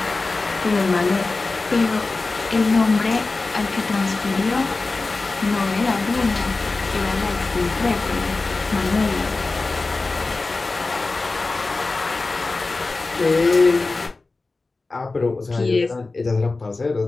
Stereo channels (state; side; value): quieter; right; 3.6 dB